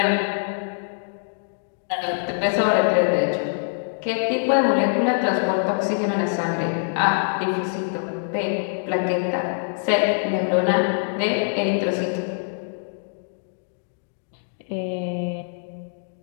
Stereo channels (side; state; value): right; silent; digital silence